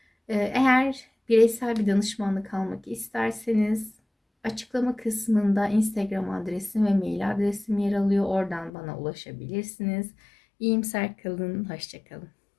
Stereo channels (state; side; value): drops out; right; at 8.7 s